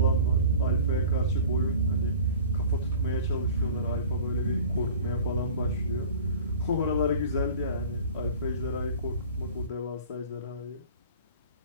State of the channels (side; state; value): both; inverted; correlation -0.42